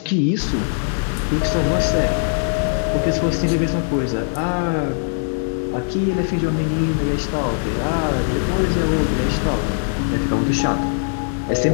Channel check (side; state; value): right; silent; digital silence